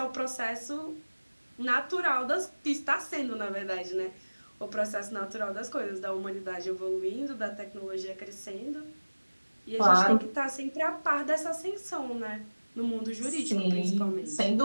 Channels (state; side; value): inverted; both; correlation -1.00